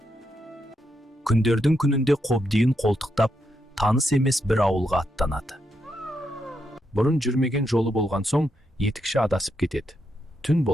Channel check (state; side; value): normal; both; correlation 0.82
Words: Күндердің күнінде қобдиын қолтықтап, таныс емес бір ауылға аттанады. Бұрын жүрмеген жолы болған соң, етікші адасып кетеді. Түн